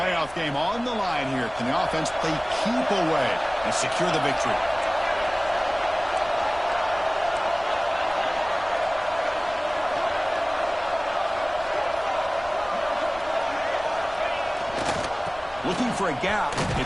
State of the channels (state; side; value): noise; left; rumble, 20 dB below the sound